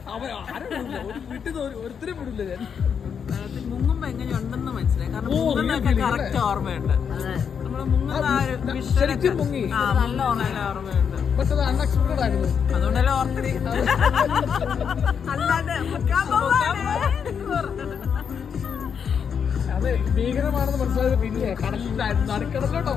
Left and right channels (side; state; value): right; quieter; 7.1 dB